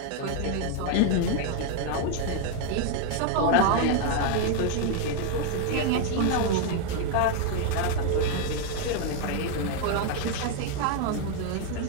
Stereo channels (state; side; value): different; both; correlation 0.00